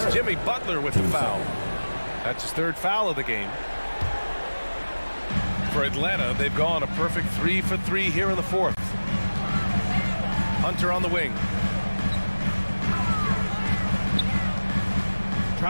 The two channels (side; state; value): both; inverted; correlation -1.00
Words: Jimmy Butler with the foul. That's his 3rd foul of the game. For Atlanta, they've gone a perfect 3 for 3 here in the 4th. Hunter on the wing.